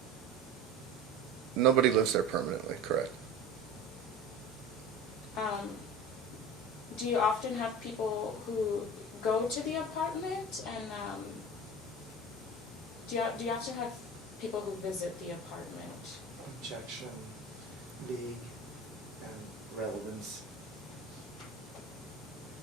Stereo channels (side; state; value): left; noise; hum, 27 dB below the sound